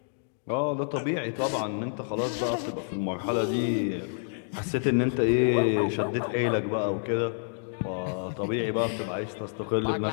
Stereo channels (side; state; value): right; silent; digital silence